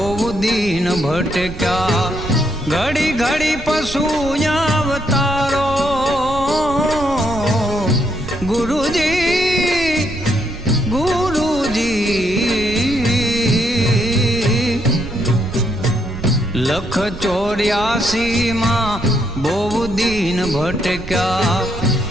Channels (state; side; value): noise; right; rumble, 11 dB below the sound